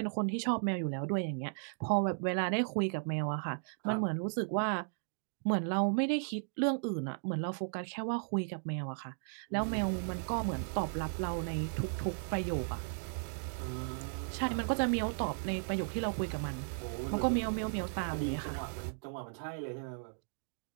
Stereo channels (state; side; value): silent; left; digital silence